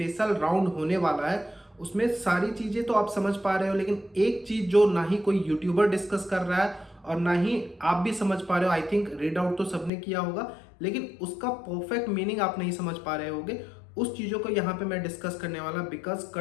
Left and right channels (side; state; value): right; drops out; at 9.9 s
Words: राउंड होने वाला है। उसमें सारी चीजें तो आप समझ पा रहे हो, लेकिन एक चीज जो ना ही कोई यूट्यूबर डिस्कस कर रहा है और ना ही आप भी समझ पा रहे हो। आई थिंक रीड आउट तो सबने किया होगा, लेकिन उसका परफेक्ट मीनिंग आप नहीं समझ पा रहे होगे। उस चीज़ों को यहाँ पे मैं डिस्कस करने वाला, बिकॉज